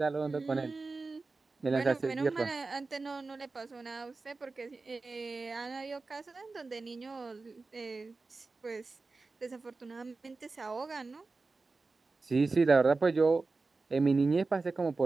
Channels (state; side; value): quieter; left; 3.8 dB